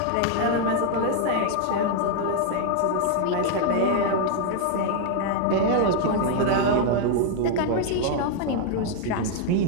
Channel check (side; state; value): both; different; correlation 0.00